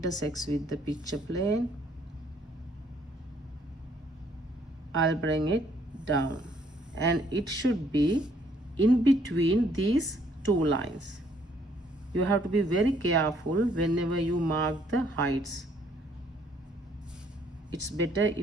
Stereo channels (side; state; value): both; normal; correlation 0.65